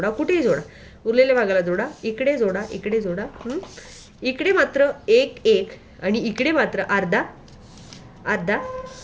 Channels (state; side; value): identical; both; correlation 1.00